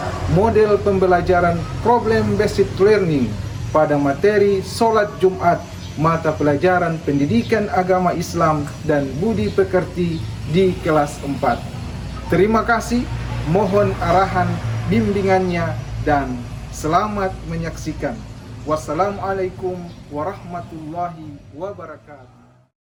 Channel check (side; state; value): both; identical; correlation 1.00